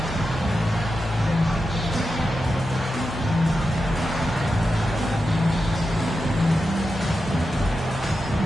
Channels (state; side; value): normal; both; correlation 0.89